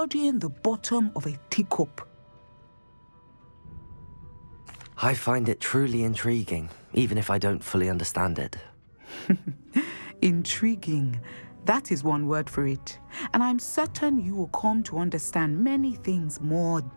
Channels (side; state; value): both; inverted; correlation -1.00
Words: the bottom of a teacup. I find it truly intriguing, even if I don't fully understand it. Intriguing. That is one word for it. And I'm certain you will come to understand many things more